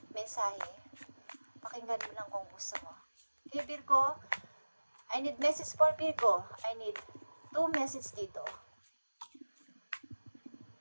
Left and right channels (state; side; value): inverted; both; correlation -1.00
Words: mensahe. Pakinggan mo lang kung gusto mo. Okay, Virgo, I need message for Virgo. I need 2 message dito.